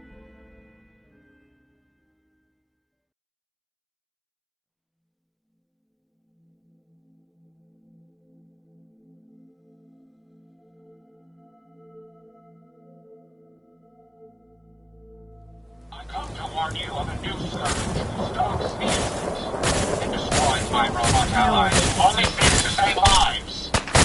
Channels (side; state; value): both; identical; correlation 1.00